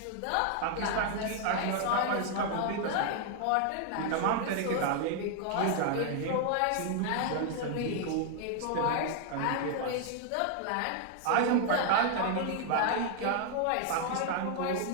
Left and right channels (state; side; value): different; both; correlation 0.00